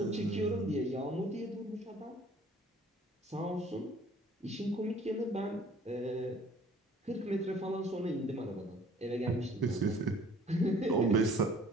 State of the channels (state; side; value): normal; both; correlation 0.53